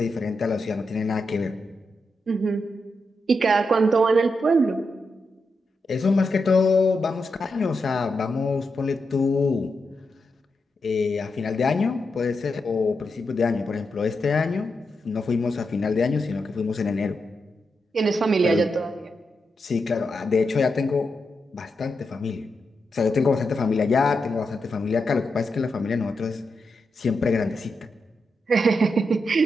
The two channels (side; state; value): both; normal; correlation 0.86